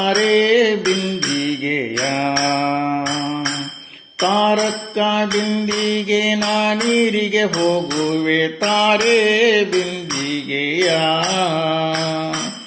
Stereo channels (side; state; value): both; identical; correlation 1.00